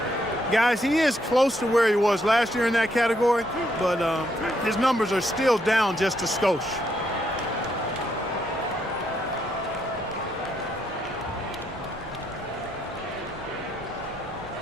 Guys, he is close to where he was last year in that category, but his numbers are still down just a skosh.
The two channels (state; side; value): normal; both; correlation 0.75